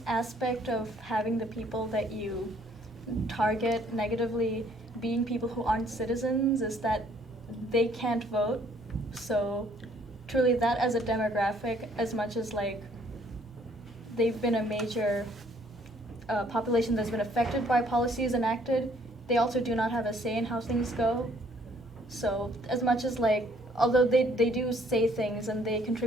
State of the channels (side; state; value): both; normal; correlation 0.63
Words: aspect of having the people that you target negatively being people who aren't citizens is that they can't vote. So truly that as a demographic, as much as like they've been a major population that's been affected by policies enacted, they also do not have a say in how things go. So as much as like, although they do say things and they